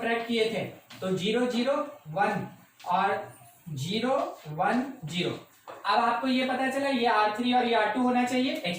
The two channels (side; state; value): both; identical; correlation 1.00